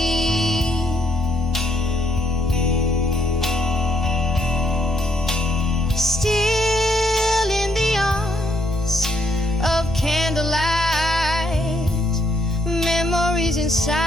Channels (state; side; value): normal; both; correlation 0.73